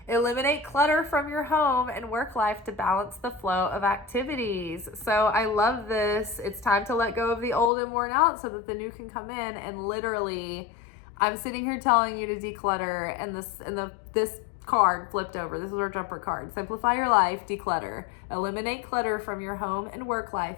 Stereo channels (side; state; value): right; drops out; at 7.7 s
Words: Eliminate clutter from your home and work life to balance the flow of activities. So I love this. It's time to let go of the old and worn out so that the new can come in. And literally, I'm sitting here telling you to declutter, and this card flipped over. This is our jumper card. Simplify your life, declutter. Eliminate clutter from your home and work